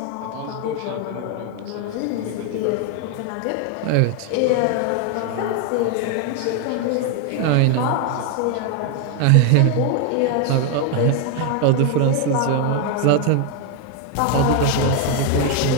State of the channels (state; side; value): different; both; correlation 0.01